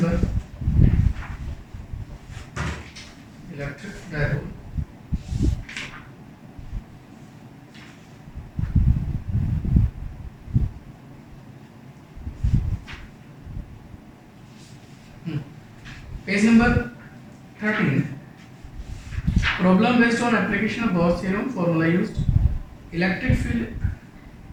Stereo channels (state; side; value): identical; both; correlation 1.00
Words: electric dipole. Page number 13. Problem based on application of Gauss theorem. Formula used. Electric field